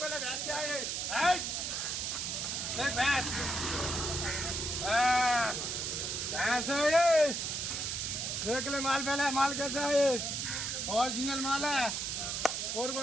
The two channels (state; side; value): noise; right; hiss, 2 dB below the sound